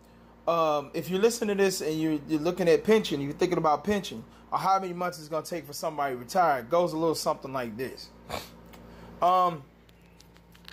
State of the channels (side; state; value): both; identical; correlation 1.00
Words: if you're listening to this and you're looking at pension, you're thinking about pension, or how many months it's going to take for somebody to retire, it goes a little something like this. So